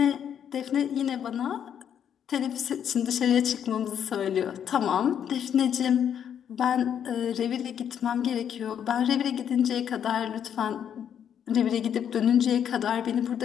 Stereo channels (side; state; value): right; quieter; 8.8 dB